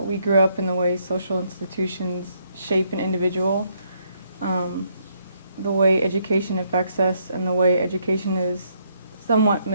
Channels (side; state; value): both; inverted; correlation -0.72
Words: grew up and the way social institutions shape an individual, the way education affects us and the way education is somewhat